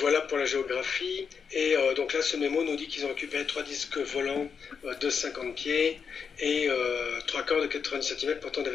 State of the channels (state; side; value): quieter; right; 6.2 dB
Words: pour la géographie. Et donc là, ce mémo nous dit qu'ils ont récupéré 3 disques volants de 50 pieds et 3 corps de 90 cm portant des